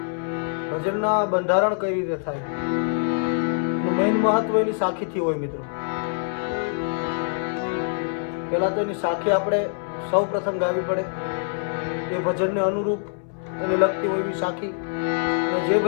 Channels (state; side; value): silent; right; 62 dB below the other